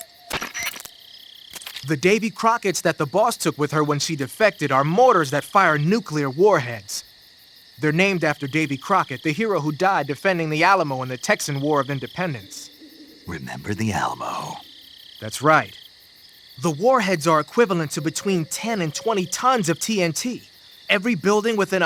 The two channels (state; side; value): identical; both; correlation 1.00